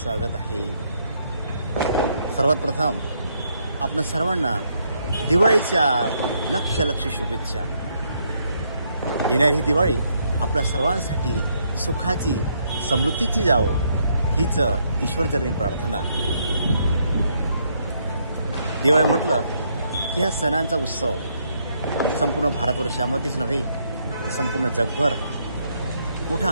आहे. सर्वात प्रथम आपल्या सर्वांना दिवाळीच्या लक्ष शुभेच्छा. येणारी ही दिवाळी आपल्या सर्वांसाठी सुखाची समृद्धीची जावो हीच ईश्वरचरणी प्रार्थना. दिवाळी म्हटलं की हा सणांचा उत्सव संपूर्ण भारतवर्षामध्येच नव्हे तर संपूर्ण जगभर मोठ्या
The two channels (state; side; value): inverted; both; correlation -0.73